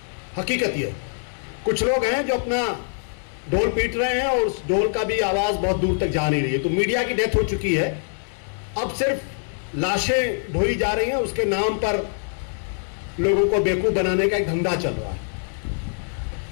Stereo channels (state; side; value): silent; right; 63 dB below the other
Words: हकीकत ये, कुछ लोग हैं जो अपना ढोल पीट रहे हैं और उस ढोल का भी आवाज बहुत दूर तक जा नहीं रही है। तो मीडिया की डेथ हो चुकी है, अब सिर्फ लाशें ढोई जा रही हैं। उसके नाम पर लोगों को बेवकूफ बनाने का एक धंधा चल रहा है।